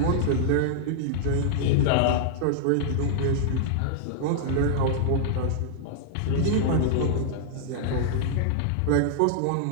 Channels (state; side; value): different; both; correlation -0.01